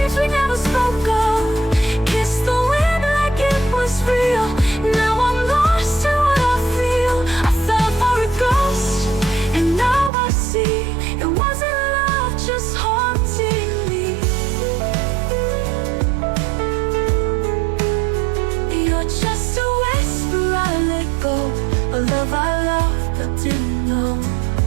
we never spoke of, kissed the wind like it was real. Now I'm lost in what I feel. I fell for a ghost, and now I see it wasn't love, just haunting me. You're just a whisper I let go, a love I loved but didn't know.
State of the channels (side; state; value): left; drops out; at 10.1 s